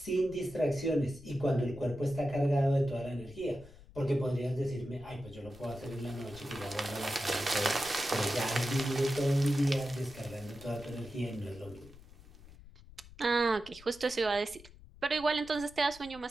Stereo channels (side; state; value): left; noise; rumble, 20 dB below the sound